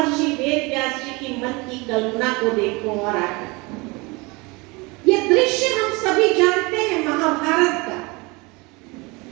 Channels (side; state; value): left; quieter; 26.0 dB